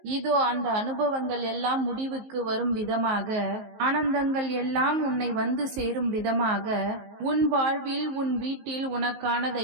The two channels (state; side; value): late; left; 19 ms